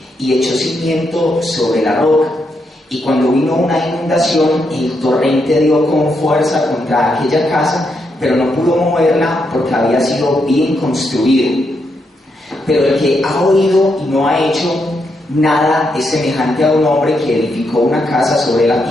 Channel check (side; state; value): both; normal; correlation 0.81